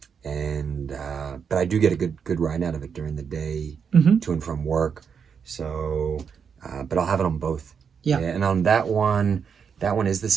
But I do get a good ride out of it during the day, to and from work. So, but I'll have it on both. Yeah. And on that one is the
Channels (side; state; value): left; quieter; 6.7 dB